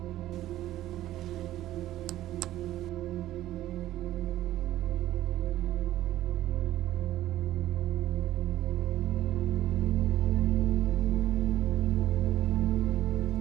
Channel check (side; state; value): left; quieter; 14.1 dB